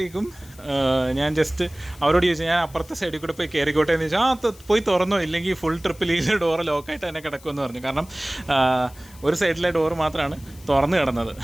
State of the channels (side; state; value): left; noise; hiss, 23 dB below the sound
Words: ഞാൻ ജസ്റ്റ് അവരോട് ചോദിച്ചു, ഞാൻ അപ്പുറത്തെ സൈഡിൽ കൂടെ പോയി കയറിക്കോട്ടെ എന്ന് ചോദിച്ചാൽ പോയി തുറന്നോ, ഇല്ലെങ്കിൽ ഫുൾ ട്രിപ്പിൽ ഈ ഡോറ് ലോക്കായിട്ട് തന്നെ കിടക്കുമെന്ന് പറഞ്ഞു. കാരണം ഒരു സൈഡിലെ ഡോറ് മാത്രമാണ് തുറന്ന് കിടന്നത്.